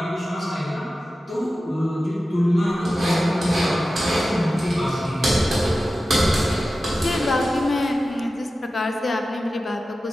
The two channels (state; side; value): normal; both; correlation 0.94